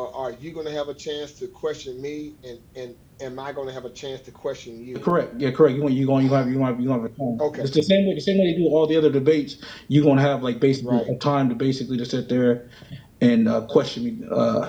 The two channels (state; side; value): identical; both; correlation 1.00